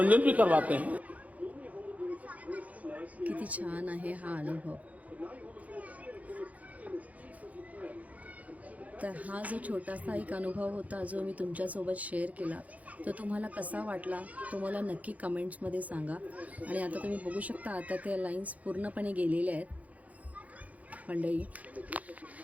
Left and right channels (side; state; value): left; late; 0.071 ms